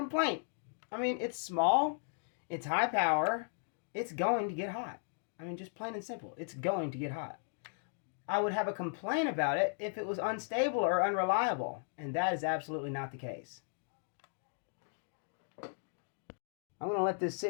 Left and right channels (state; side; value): silent; right; digital silence